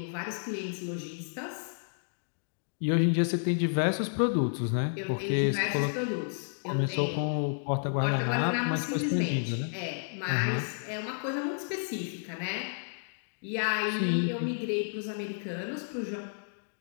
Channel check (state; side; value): silent; right; digital silence